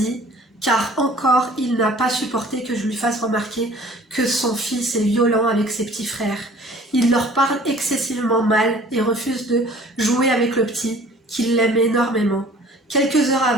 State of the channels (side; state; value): both; normal; correlation 0.50